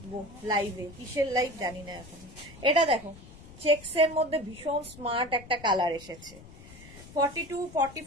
লাইভে, কিসের লাইভ জানি না এখন। এটা দেখো, চেক্স এর মধ্যে ভীষণ স্মার্ট একটা কালার এসেছে। 42,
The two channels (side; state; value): left; noise; rumble, 18 dB below the sound